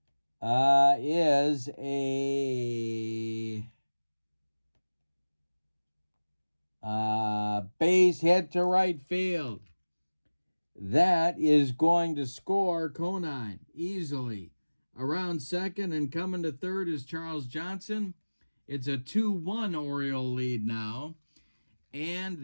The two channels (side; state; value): both; inverted; correlation -1.00